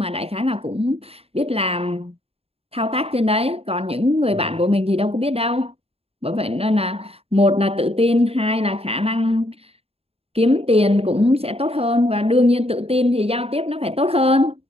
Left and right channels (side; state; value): left; late; 0.29 ms